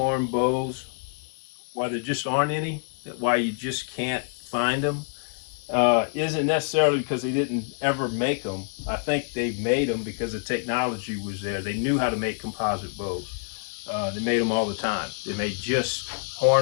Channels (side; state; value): right; silent; digital silence